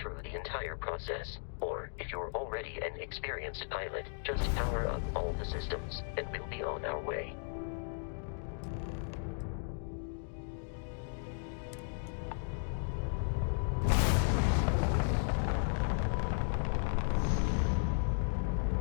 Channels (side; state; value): right; silent; digital silence